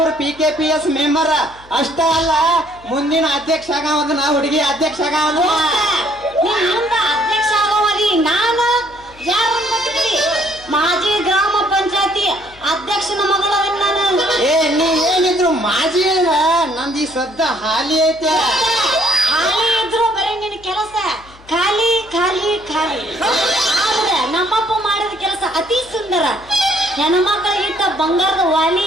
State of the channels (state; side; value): noise; left; hum, 24 dB below the sound